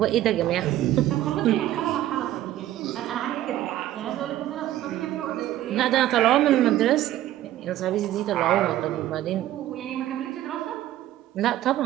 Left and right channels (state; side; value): quieter; left; 13.6 dB